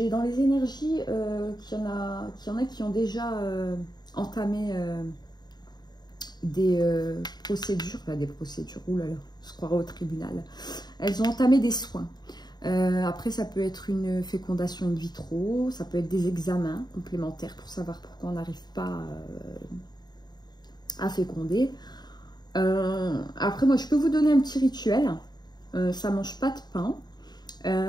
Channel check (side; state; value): right; late; 0.20 ms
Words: dans les énergies qu'il y en a qui ont déjà entamé des procédures, oulala, je croirais au tribunal. Elles ont entamé des soins. Après, ça peut être une fécondation in vitro, ça peut être des examens complémentaires pour savoir pourquoi on n'arrive pas à féconder. Après, moi, je peux vous donner un petit rituel. Ça mange pas de pain.